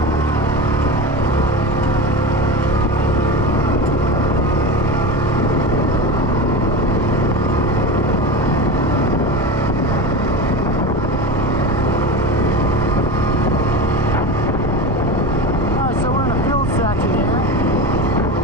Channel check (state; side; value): normal; both; correlation 0.26